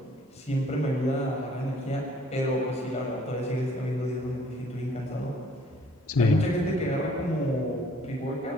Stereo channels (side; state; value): both; normal; correlation 0.60